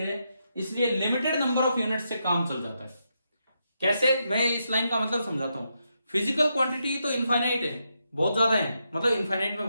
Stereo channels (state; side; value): inverted; both; correlation -0.82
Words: है, इसलिए लिमिटेड नंबर ऑफ यूनिट से काम चल जाता है। कैसे? मैं इस लाइन का मतलब समझाता हूं। फिजिकल क्वांटिटी तो इनफाइनाइट है, बहुत ज्यादा है, मतलब इनफाइनाइट में